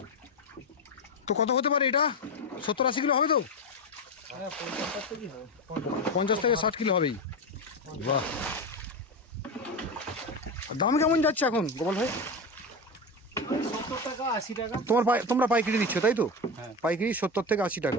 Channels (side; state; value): both; normal; correlation 0.17